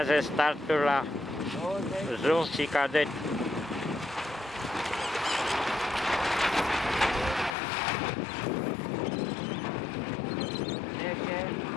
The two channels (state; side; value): drops out; right; at 7.6 s